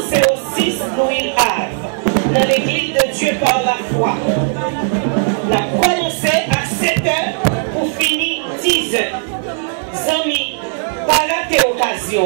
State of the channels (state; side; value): silent; left; digital silence